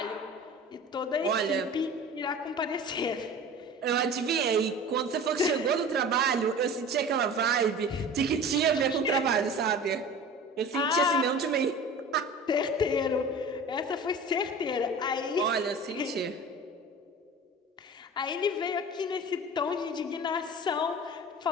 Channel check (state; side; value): normal; both; correlation 0.38